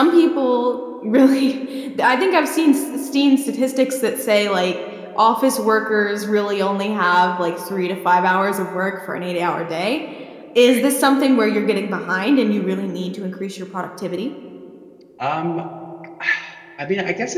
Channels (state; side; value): identical; both; correlation 1.00